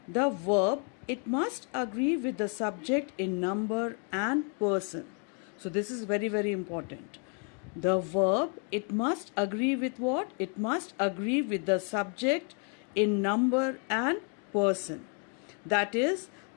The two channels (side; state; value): right; quieter; 39.8 dB